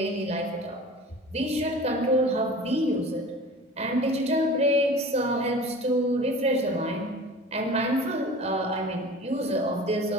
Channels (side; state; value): both; normal; correlation 0.39